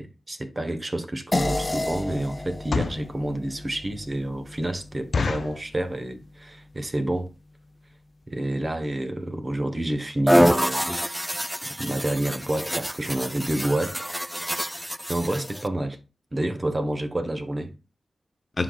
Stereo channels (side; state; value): both; normal; correlation 0.97